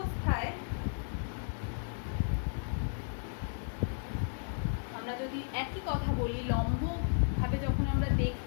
আমরা যদি একই কথা বলি, লম্ব ভাবে যখন আমরা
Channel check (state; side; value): silent; right; digital silence